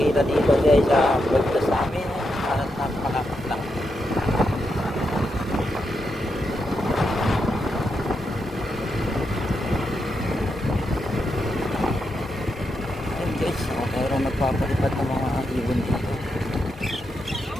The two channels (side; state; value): both; normal; correlation 0.84